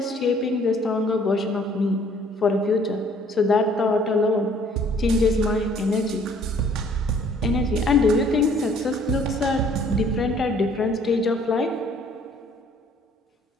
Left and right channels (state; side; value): normal; both; correlation 0.58